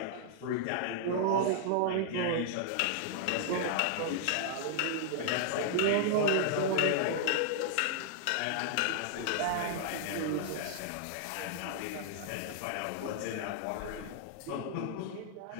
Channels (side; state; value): both; different; correlation -0.01